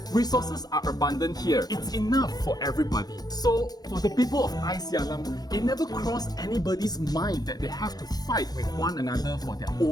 Resources are abundant here. It's enough for everybody. So, for the people of Icyalam, it never crossed anybody's mind that they have to fight with one another for their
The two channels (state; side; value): late; right; 0.19 ms